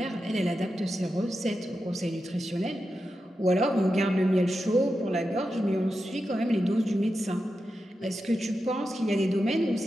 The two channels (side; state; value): both; normal; correlation 0.90